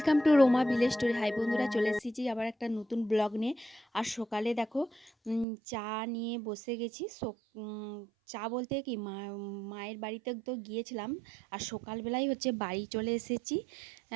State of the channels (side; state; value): left; drops out; at 5.5 s